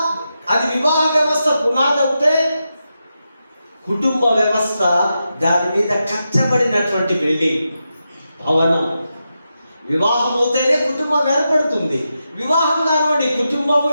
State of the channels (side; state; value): both; inverted; correlation -0.88